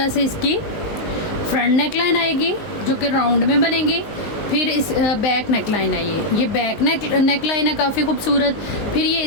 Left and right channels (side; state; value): right; late; 19 ms